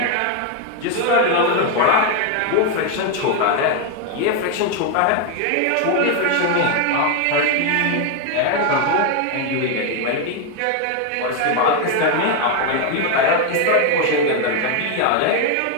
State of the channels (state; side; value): different; both; correlation 0.01